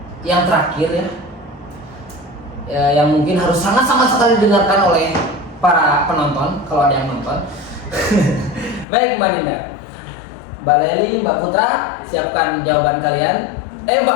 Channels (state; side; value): drops out; right; at 8.8 s